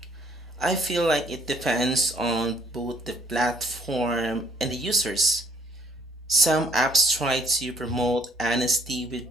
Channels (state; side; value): normal; both; correlation 0.63